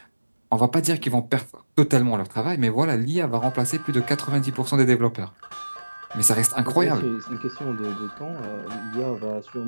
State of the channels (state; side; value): inverted; both; correlation -1.00